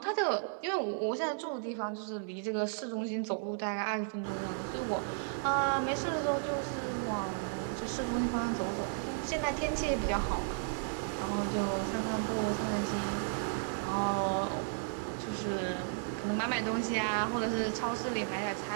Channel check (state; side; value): silent; left; digital silence